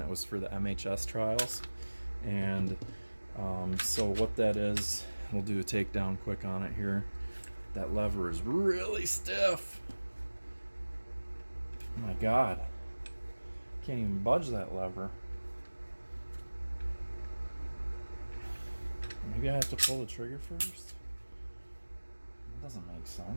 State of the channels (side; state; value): both; inverted; correlation -1.00